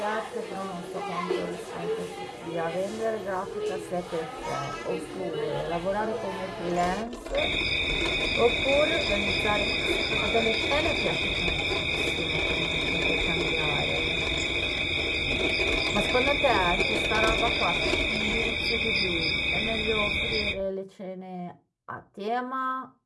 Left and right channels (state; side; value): identical; both; correlation 1.00